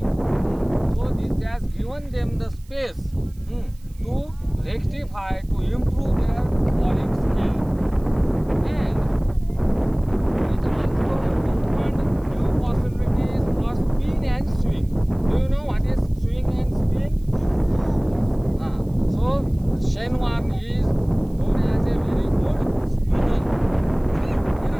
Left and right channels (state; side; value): noise; right; hiss, 29 dB below the sound